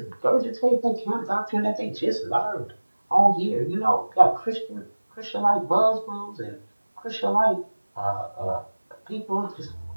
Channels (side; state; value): both; inverted; correlation -1.00